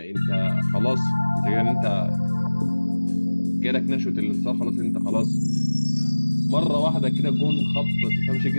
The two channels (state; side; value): inverted; both; correlation -1.00